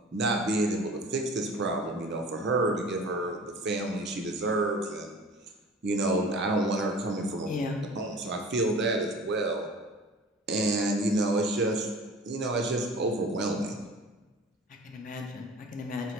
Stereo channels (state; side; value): normal; both; correlation 0.43